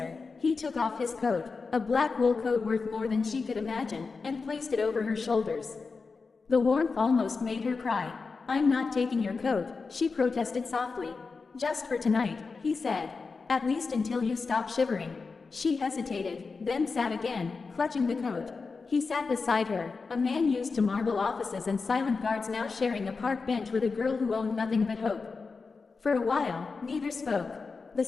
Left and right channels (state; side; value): quieter; right; 4.5 dB